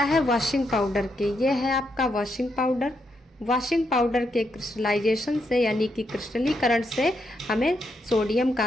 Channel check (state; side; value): normal; both; correlation 0.80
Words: है? वॉशिंग पाउडर के। ये है आपका वॉशिंग पाउडर। वॉशिंग पाउडर के क्रिस्टलाइजेशन से यानी कि क्रिस्टलीकरण से हमें सोडियम